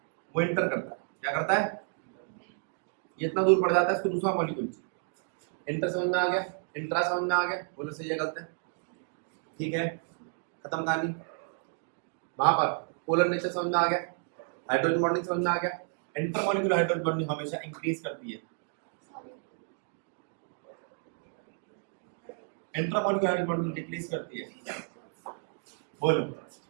वो इंटर करता है। क्या करता है? ये इतना दूर पड़ जाता है, इसको दूसरा मॉलिक्यूल। इंटर समझ में आ गया? इंट्रा समझ में आ गया? बोलो सही है गलत है? ठीक है, खत्म कहानी। वहां पर पोलर नेचर समझ में आ गया, हाइड्रोजन बॉन्डिंग समझ में आ गया। इंटरमॉलिक्यूलर हाइड्रोजन बॉन्डिंग हमेशा इंक्रीज करती है, इंट्रामॉलिक्यूलर हाइड्रोजन बॉन्डिंग डिक्रीज करती है। बोलो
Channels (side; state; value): left; silent; 57 dB below the other